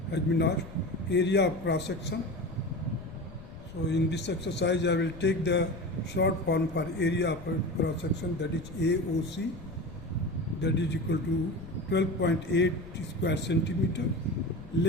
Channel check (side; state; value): left; noise; rumble, 15 dB below the sound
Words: has been asked, area of cross section. So in this exercise I will take the short form for area of cross section, that is AOC, that is equal to 12.8 square centimeter,